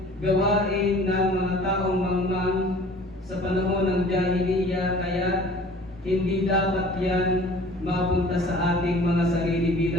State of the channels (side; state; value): both; normal; correlation 0.48